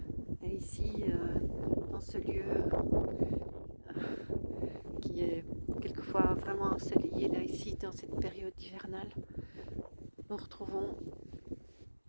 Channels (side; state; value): both; inverted; correlation -1.00